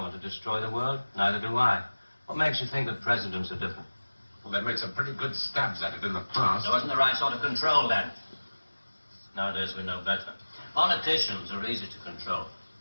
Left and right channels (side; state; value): both; inverted; correlation -1.00